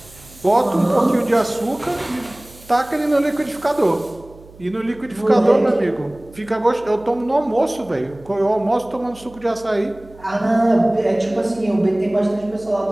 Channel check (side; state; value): right; noise; hum, 22 dB below the sound